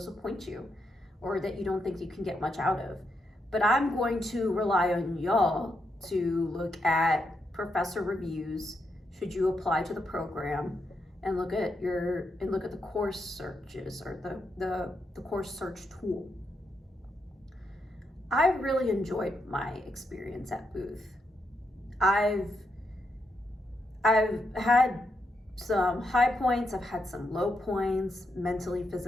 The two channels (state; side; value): normal; both; correlation 0.81